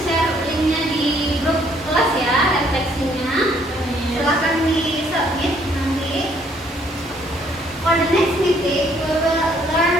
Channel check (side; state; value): both; normal; correlation 0.65